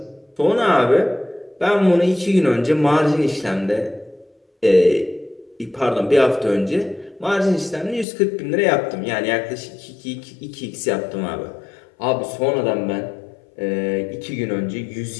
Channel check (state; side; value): drops out; right; at 8.1 s